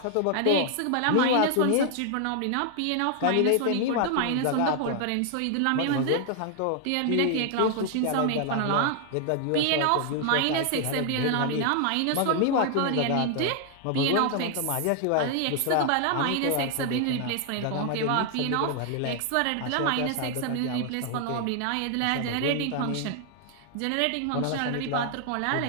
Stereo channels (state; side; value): different; both; correlation 0.00